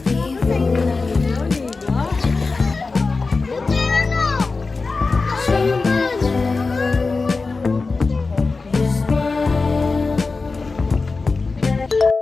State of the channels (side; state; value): right; quieter; 4.0 dB